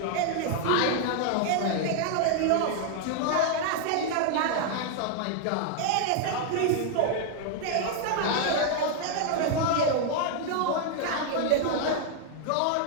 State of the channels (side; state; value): both; different; correlation 0.00